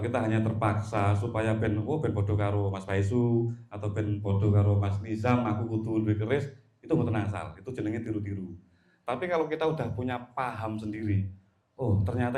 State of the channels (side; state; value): both; identical; correlation 1.00